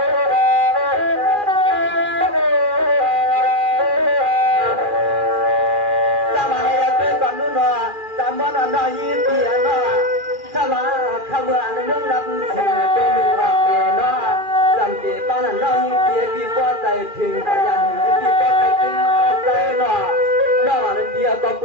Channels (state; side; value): late; left; 2.4 ms